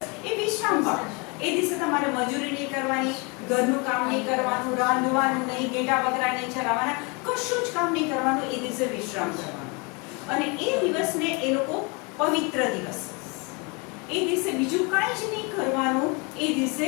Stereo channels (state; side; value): quieter; right; 30.5 dB